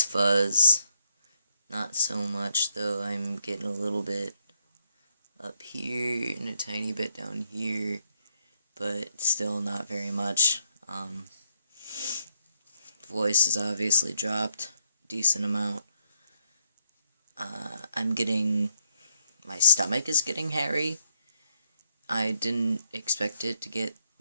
fuzz, not so much though. I'm getting a little bit up here and a tiny bit down here, but still not very much. Voice is obviously dropped decent amount. My stomach is getting hairy. I didn't expect it to get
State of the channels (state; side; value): inverted; both; correlation -0.77